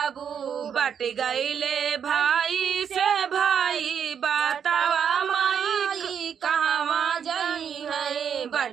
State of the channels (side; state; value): left; quieter; 7.8 dB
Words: बट गईले भाई से भाई, बतावा माई कहवा जाई है,